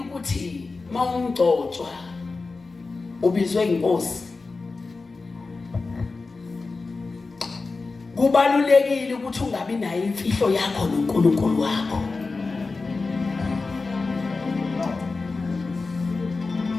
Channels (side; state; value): right; quieter; 3.9 dB